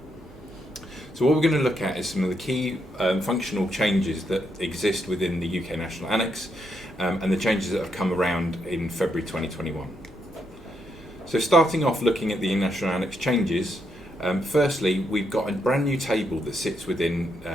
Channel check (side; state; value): both; normal; correlation 0.79